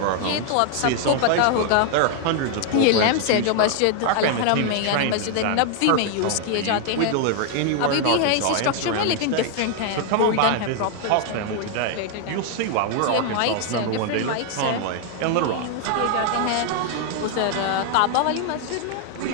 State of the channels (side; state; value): both; different; correlation 0.00